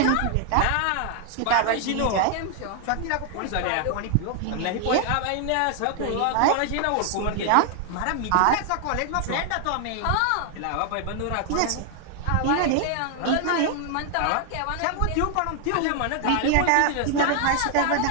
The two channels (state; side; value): different; both; correlation 0.00